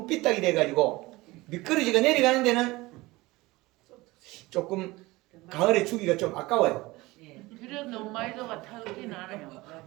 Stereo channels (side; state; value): left; quieter; 20.8 dB